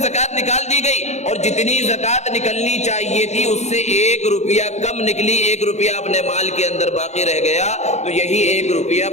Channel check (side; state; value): right; late; 0.33 ms